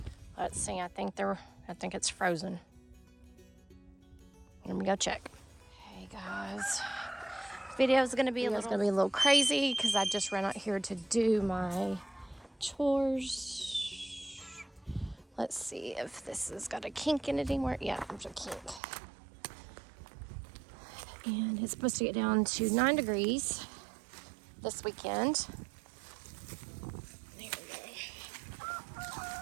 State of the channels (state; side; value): drops out; left; at 18.8 s